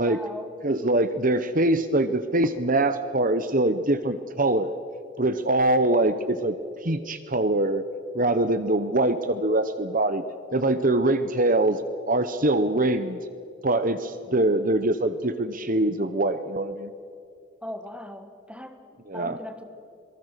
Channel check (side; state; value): both; normal; correlation 0.17